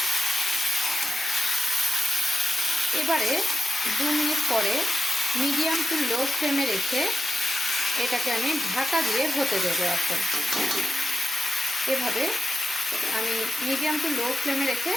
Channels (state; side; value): normal; both; correlation 0.89